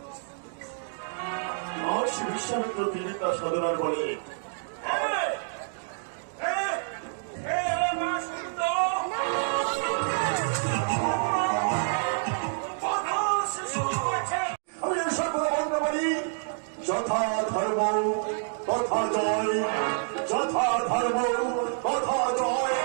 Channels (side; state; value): left; silent; digital silence